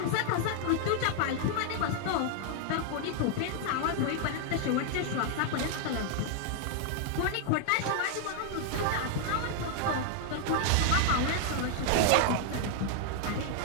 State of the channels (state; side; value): different; both; correlation 0.00